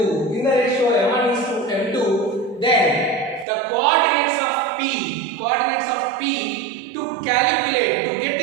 In the ratio m1 is to m2, then the coordinates of P to get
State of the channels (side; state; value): left; drops out; at 3.5 s